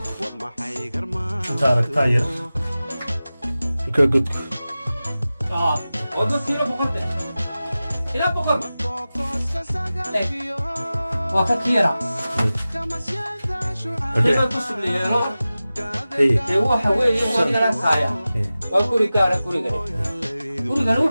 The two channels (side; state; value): both; inverted; correlation -0.96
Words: تارك تاير كقد وقلت له بقدر إلى بقدر وفكيرة كيف تصل لي هو حوالي هو دراسة وكل كارا كل gurigan